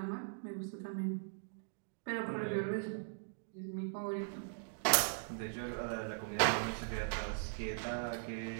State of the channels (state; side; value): silent; left; digital silence